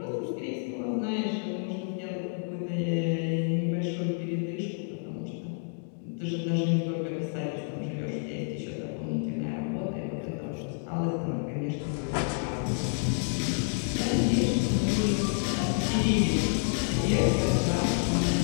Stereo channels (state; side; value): silent; right; 58 dB below the other